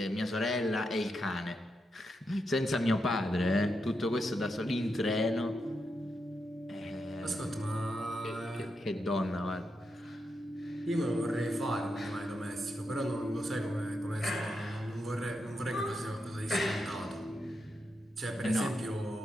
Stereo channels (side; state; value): both; normal; correlation 0.85